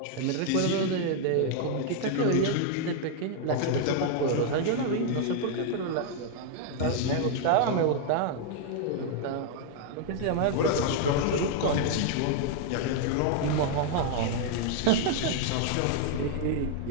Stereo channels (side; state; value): both; different; correlation 0.00